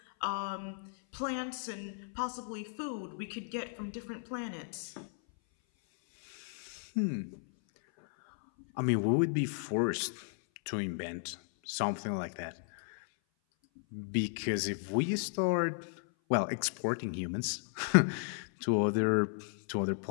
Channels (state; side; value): silent; right; 55 dB below the other